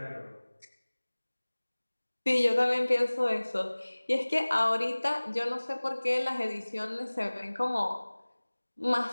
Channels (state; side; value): inverted; both; correlation -1.00